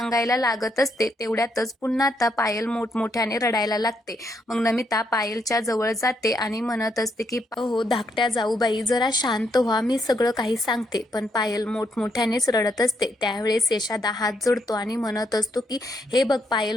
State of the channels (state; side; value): normal; both; correlation 0.77